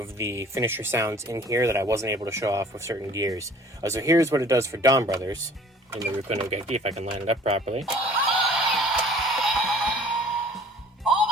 the finisher sounds in here that I wasn't able to show off with certain gears. So here's what it does for Donbrothers in the Ryuko no Geki, if I can line it up properly.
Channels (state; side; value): normal; both; correlation 0.51